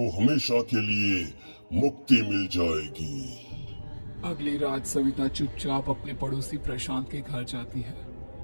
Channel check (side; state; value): both; inverted; correlation -1.00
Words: हमेशा के लिए मुक्ति मिल जाएगी। अगली रात सविता चुपचाप अपने पड़ोसी प्रशांत के घर जाती है।